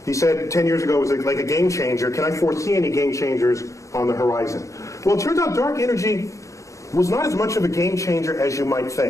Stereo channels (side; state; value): right; late; 0.15 ms